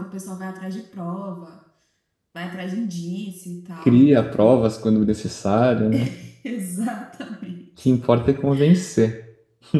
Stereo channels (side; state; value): both; identical; correlation 1.00